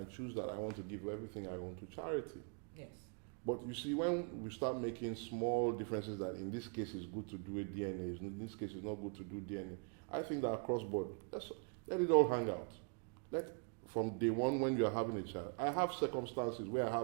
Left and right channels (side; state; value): left; quieter; 38.3 dB